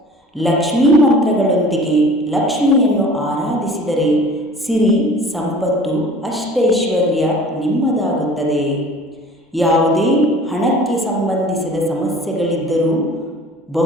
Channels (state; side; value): normal; both; correlation 0.46